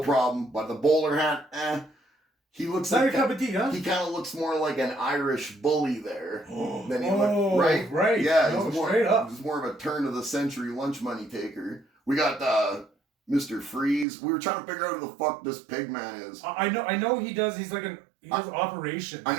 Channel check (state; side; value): drops out; left; at 14.1 s